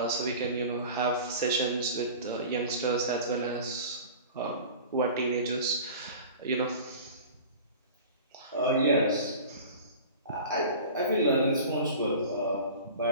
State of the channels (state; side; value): inverted; both; correlation -0.39